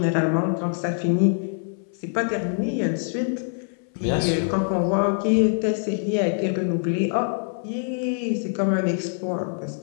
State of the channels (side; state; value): right; silent; 62 dB below the other